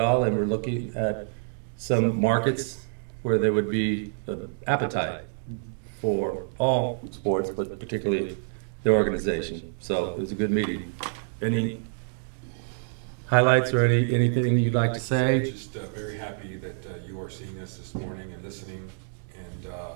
And we're looking at some markets where there would be appetite for all sports, but particularly the organization. So it was a good meeting. Any highlights or anything you'd like to say? Just very happy that you are seeing us this morning and listening. And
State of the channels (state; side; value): silent; left; digital silence